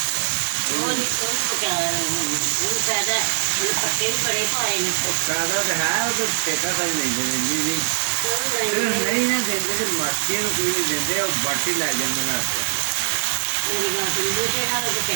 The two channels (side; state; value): left; silent; digital silence